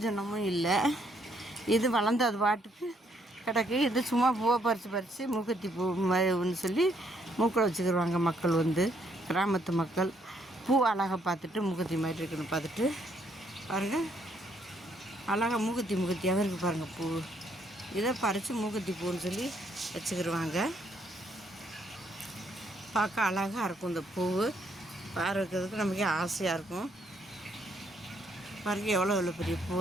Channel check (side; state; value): both; normal; correlation 0.71